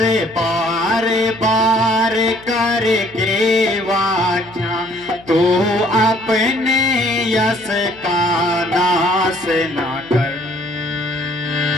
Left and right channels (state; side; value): noise; left; hum, 23 dB below the sound